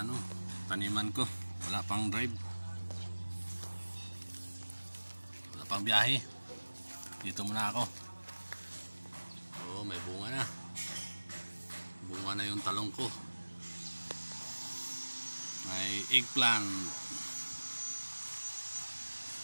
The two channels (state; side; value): inverted; both; correlation -1.00